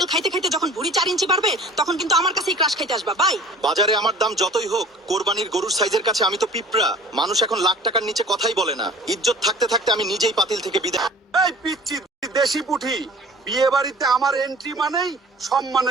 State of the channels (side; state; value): both; normal; correlation 0.45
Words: খাইতে খাইতে যখন ভুঁড়ি 4 ইঞ্চি বাড়বে তখন কিন্তু আমার কাছেই ক্রাশ খাইতে আসবা। বাই। বাজারে আমার দাম যতই হোক, কোরবানির গরুর সাইজের কাছে আমি তো পিঁপড়া। মানুষ এখন লাখ টাকার নিচে কথাই বলে না। ইজ্জত থাকতে থাকতে আমি নিজেই পাতিল থেকে বিদায়। এই পিচ্চি দেশি পুঠি, বিয়ে বাড়িতে আমার এন্ট্রি মানেই